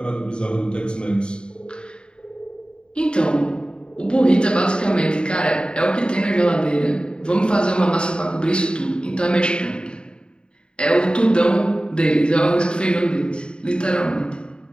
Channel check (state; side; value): late; right; 0.051 ms